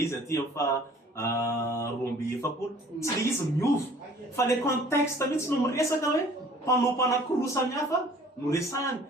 izy aty amin'ny fa roa amby efapolo tsy le izy miova fa le contexte mihitsy no miresaka hoe mpanompo anakiroa samihafa no resahany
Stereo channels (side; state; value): both; normal; correlation 0.52